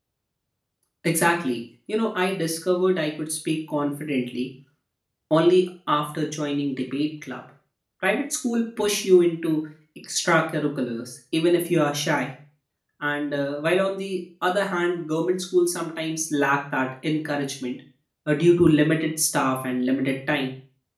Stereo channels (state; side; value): identical; both; correlation 1.00